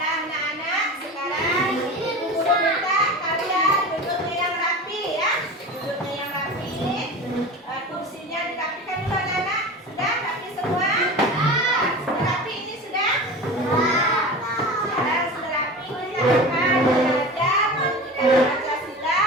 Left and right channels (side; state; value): both; normal; correlation 0.32